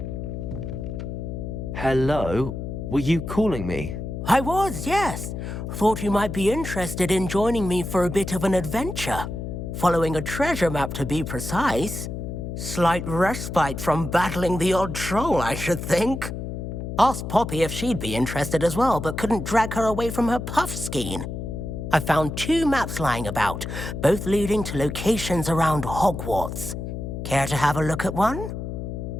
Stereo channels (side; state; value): left; noise; hum, 6 dB below the sound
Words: Hello? Were you calling me? I was, yes. Thought you might be interested in joining me for a bit of an adventure. Following a treasure map, to be precise. Slight respite from battling the odd troll, I should think. Asked Poppy if she'd be interested as well, but couldn't drag her away from her puff skein. I found 2 maps lying about, both leading to locations around Hogwarts. Care to have a look at one?